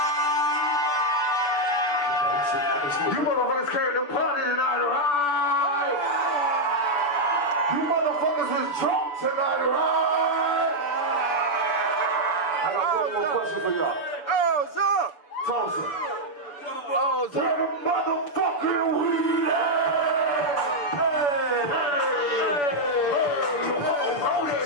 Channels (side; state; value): right; late; 6.9 ms